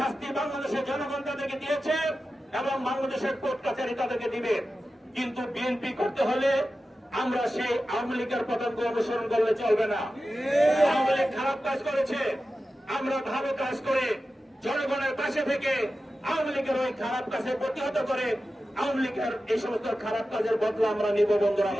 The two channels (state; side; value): normal; both; correlation 0.93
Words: বাংলাদেশের জনগণ তাদেরকে দিয়েছে এবং বাংলাদেশের কোর্ট কাছারি তাদেরকে দিবে। কিন্তু বিএনপি করতে হলে আমরা সেই আওয়ামী লীগের পতঙ্গ অনুসরণ করলে চলবে না। আওয়ামী লীগ খারাপ কাজ করেছে, আমরা ভালো কাজ করে জনগণের পাশে থেকে আওয়ামী লীগের ওই খারাপ কাজে প্রতিহত করে আওয়ামী লীগের এই সমস্ত খারাপ কাজের বদলা আমরা নিব। বন্ধুরা